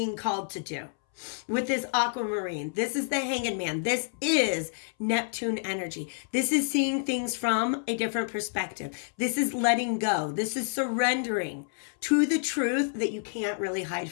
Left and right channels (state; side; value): silent; right; 59 dB below the other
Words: called to do with this aquamarine. This is the Hanged Man. This is Neptune energy. This is seeing things from a different perspective. This is letting go. This is surrendering to the truth that you can't really hide